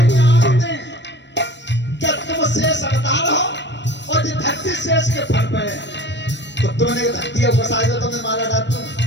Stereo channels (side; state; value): right; late; 0.52 ms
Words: जानते हैं क्या तुम शेष अवतार हो, और जो धरती शेष के फन पे है, तो तुमने धरती को फंसाई तो तुमने मारा डाल दूं।